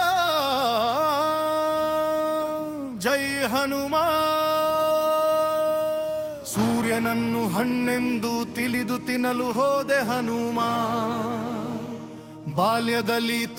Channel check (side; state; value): both; identical; correlation 1.00